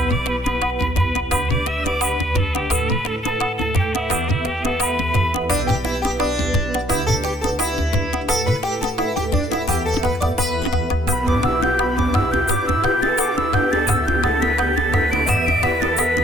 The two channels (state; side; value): normal; both; correlation 0.65